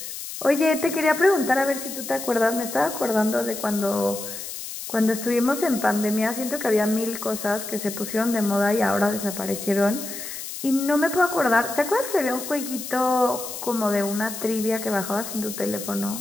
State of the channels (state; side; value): noise; left; hiss, 9 dB below the sound